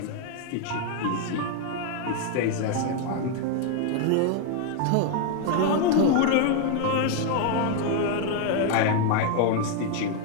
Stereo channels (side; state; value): both; different; correlation 0.01